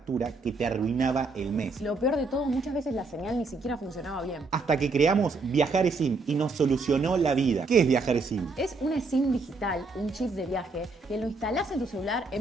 que te arruinaba el mes. Lo peor de todo, muchas veces la señal ni siquiera funcionaba bien. Hasta que creamos Viajar eSIM y nos solucionó la vida. ¿Qué es Viajar eSIM? Es una SIM digital, un chip de viaje, que lo instalás en tu celular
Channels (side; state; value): left; quieter; 3.7 dB